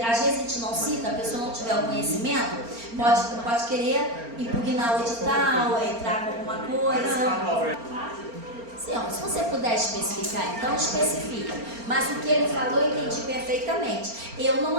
vezes a gente não cita, a pessoa não tiver o conhecimento, pode querer impugnar o edital, entrar com alguma coisa. Sim, ó, se você puder especificar, então especifica. Mas o que ele falou eu entendi perfeitamente. Eu não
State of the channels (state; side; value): late; left; 4.3 ms